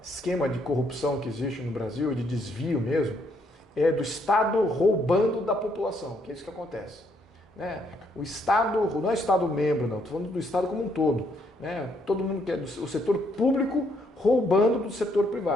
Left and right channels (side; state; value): both; normal; correlation 0.72